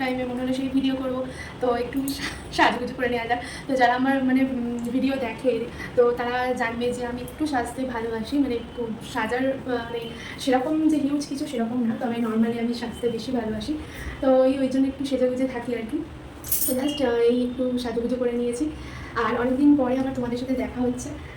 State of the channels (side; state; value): both; identical; correlation 1.00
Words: টাইমে মনে হলো সেই ভিডিও করবো, তো একটু সাজগোজ করে নেওয়া যাক। তো যারা আমার মানে ভিডিও দেখে, তো তারা জানবে যে আমি একটু সাজতে ভালোবাসি, মানে একটু সাজার মানে সেরকম যে হিউজ কিছু সেরকম না, তবে নর্মালি আমি সাজতে বেশি ভালোবাসি। তো ওই জন্য একটু সেজেগুজে থাকি আর কি। তো জাস্ট এই একটু সাজুগুজু করে নিয়েছি। আর অনেকদিন পরে আবার তোমাদের সাথে দেখা হচ্ছে।